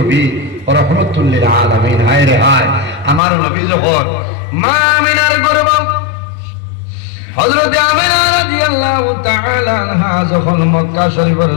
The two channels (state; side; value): drops out; right; at 3.2 s